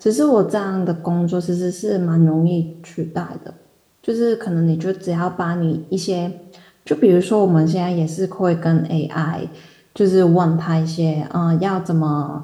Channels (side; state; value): both; identical; correlation 1.00